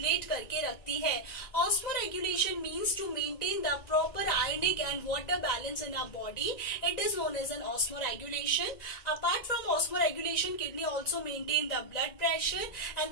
करके रखती है। Osmo regulation means to maintain the proper ionic and water balance in our body. It is known as an osmoregulation. Apart from osmoregulation, kidney also maintain the blood pressure,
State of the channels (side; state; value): right; late; 1.9 ms